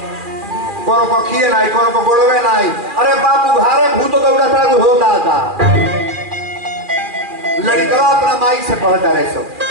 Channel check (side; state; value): left; late; 2.4 ms